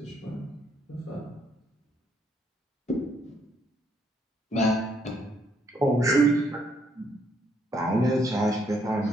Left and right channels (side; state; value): both; normal; correlation 0.71